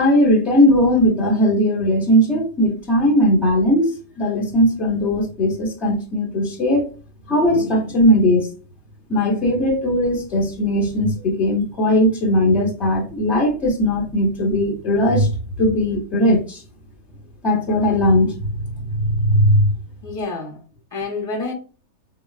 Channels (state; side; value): late; left; 3.3 ms